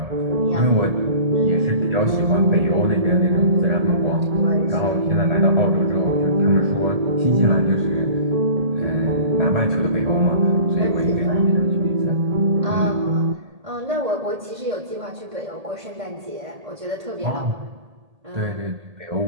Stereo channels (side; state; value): left; late; 1.8 ms